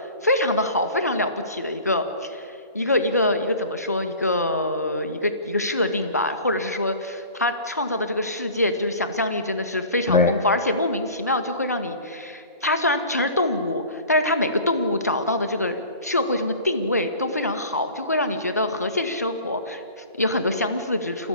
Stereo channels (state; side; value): inverted; both; correlation -0.42